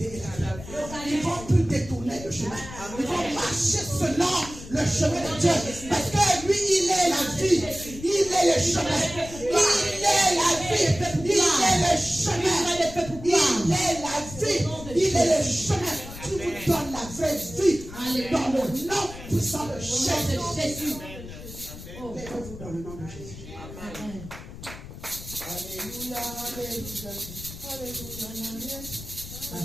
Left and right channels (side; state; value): left; noise; rumble, 13 dB below the sound